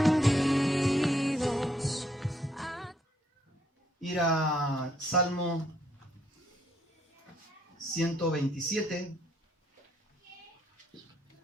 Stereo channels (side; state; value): both; normal; correlation 0.70